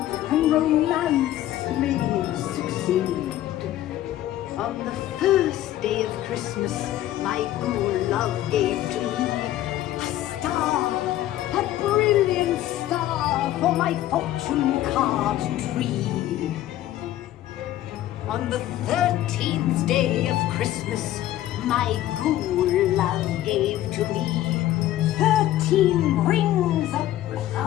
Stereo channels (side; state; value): right; quieter; 13.7 dB